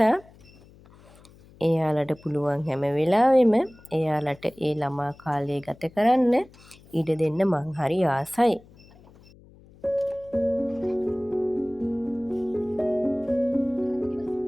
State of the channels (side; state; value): left; noise; hum, 25 dB below the sound